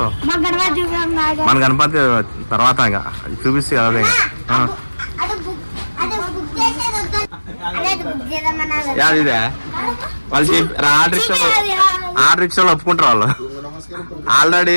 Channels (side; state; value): both; inverted; correlation -1.00